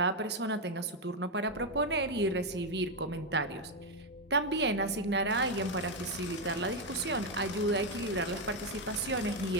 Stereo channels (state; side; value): normal; both; correlation 0.05